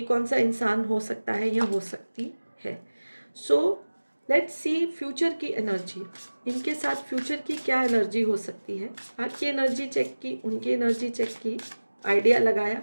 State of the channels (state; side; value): inverted; both; correlation -1.00